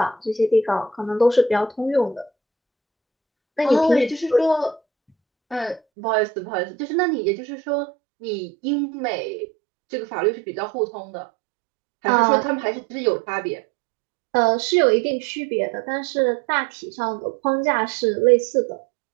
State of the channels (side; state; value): left; drops out; at 5.8 s